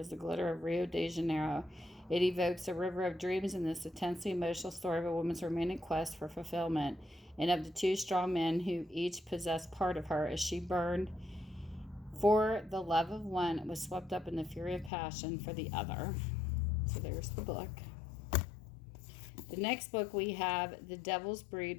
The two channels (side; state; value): right; drops out; at 14.9 s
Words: the glitter of Rio de Janeiro. It evokes a river of dreams in this intensely emotional story of a woman's romantic quest for fulfillment, and of the two strong men who each possessed part of her as she burned for the love of one and was swept up in the fury of passion for the other. So there's the book. The next book we have, The Devil's Breed